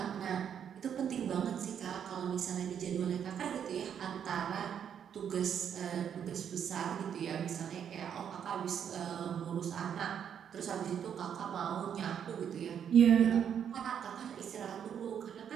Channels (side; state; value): left; quieter; 8.4 dB